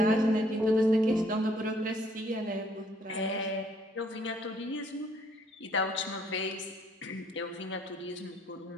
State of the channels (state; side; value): normal; both; correlation 0.65